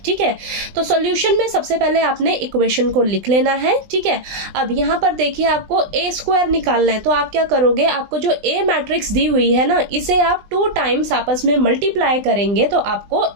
ठीक है, तो सॉल्यूशन में सबसे पहले आपने इक्वेशन को लिख लेना है। ठीक है, अब यहाँ पर देखिए आपको a स्क्वायर निकालना है, तो आप क्या करोगे, आपको जो a मैट्रिक्स दी हुई है ना, इसे आप 2 टाइम्स आपस में मल्टीप्लाई करेंगे तो आपको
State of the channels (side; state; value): left; late; 20 ms